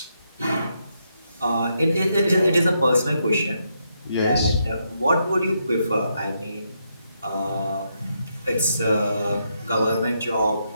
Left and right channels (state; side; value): inverted; both; correlation -0.80